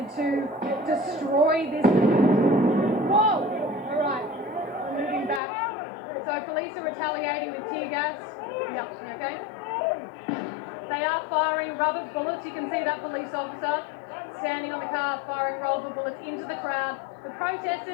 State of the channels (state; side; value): drops out; right; at 5.4 s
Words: to destroy this. Whoa! All right, we're moving back. So police are retaliating with tear gas. Yep, okay? They are firing rubber bullets. You can see that police officer standing on the car firing rubber bullets into the crowd. The